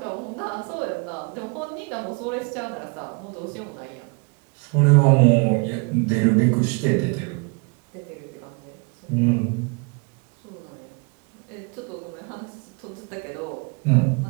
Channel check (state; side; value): quieter; left; 32.3 dB